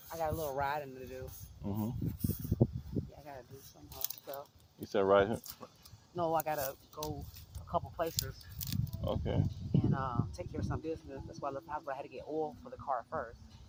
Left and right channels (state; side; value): identical; both; correlation 1.00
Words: I got a little riding to do. Yeah, I gotta do some stuff. You said right here? No, I gotta go a couple places. Okay. And take care of some business. That's why I left the house, but I had to get oil for the car first.